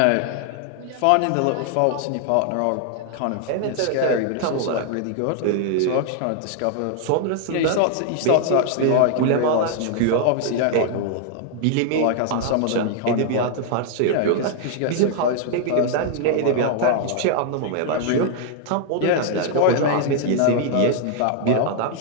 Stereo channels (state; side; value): different; both; correlation 0.00